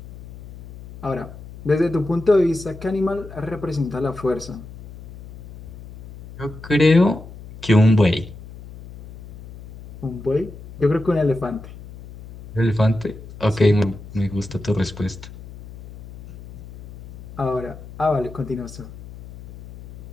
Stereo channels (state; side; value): noise; left; hum, 16 dB below the sound